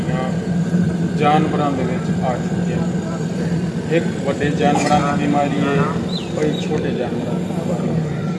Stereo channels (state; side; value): identical; both; correlation 1.00